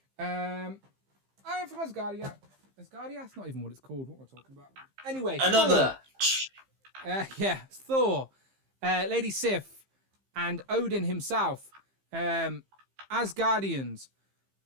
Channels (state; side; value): late; left; 15 ms